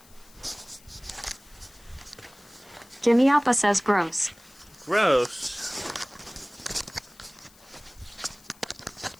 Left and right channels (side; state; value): left; noise; hiss, 25 dB below the sound